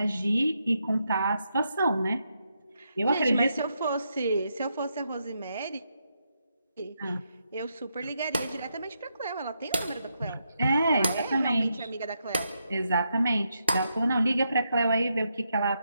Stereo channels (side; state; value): both; inverted; correlation -0.82